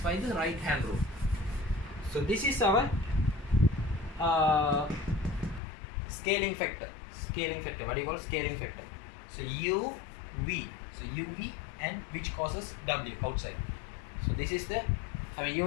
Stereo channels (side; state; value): right; drops out; at 5.6 s